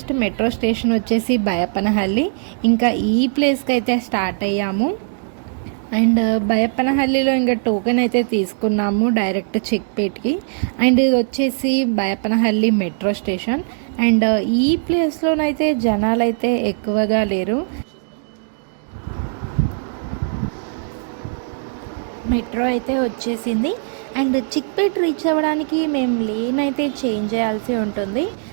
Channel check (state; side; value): silent; left; digital silence